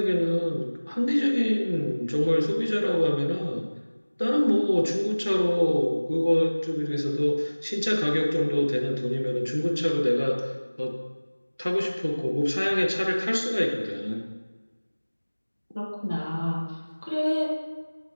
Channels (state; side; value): inverted; both; correlation -1.00